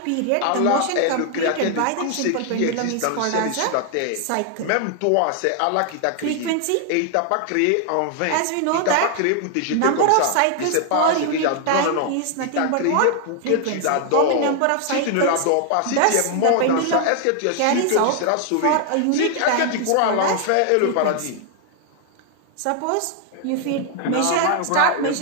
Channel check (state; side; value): different; both; correlation 0.00